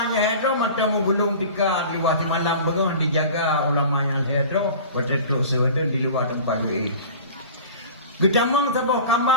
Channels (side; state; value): both; inverted; correlation -0.39